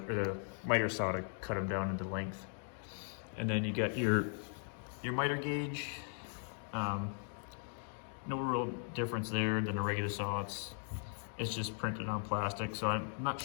or the miter saw to cut them down into length. And then you got your miter gauge. No real difference there than a regular saw. It's just printed on plastic, so I'm not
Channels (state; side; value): silent; right; 52 dB below the other